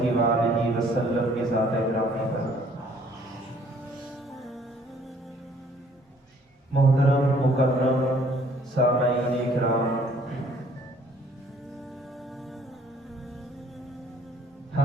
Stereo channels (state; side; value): normal; both; correlation 0.60